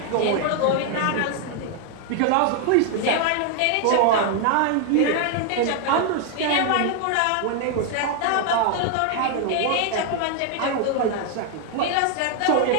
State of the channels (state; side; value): different; both; correlation 0.00